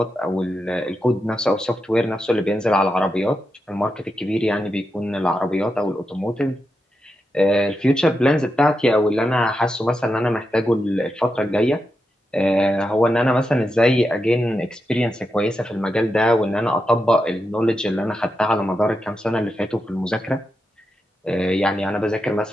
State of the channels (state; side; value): normal; both; correlation 0.87